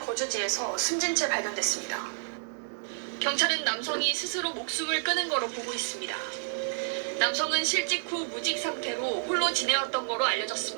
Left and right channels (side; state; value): left; silent; digital silence